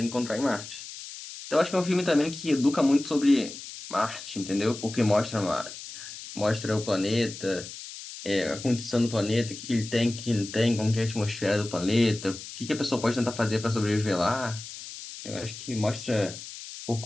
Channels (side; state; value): left; noise; hiss, 12 dB below the sound